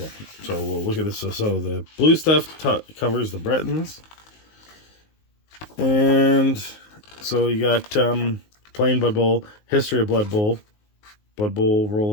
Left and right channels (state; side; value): late; right; 19 ms